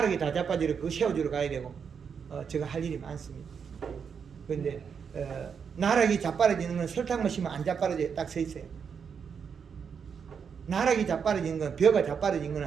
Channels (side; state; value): left; quieter; 6.7 dB